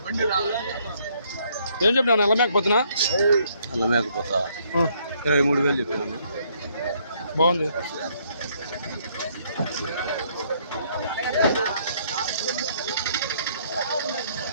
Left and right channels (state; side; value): inverted; both; correlation -0.68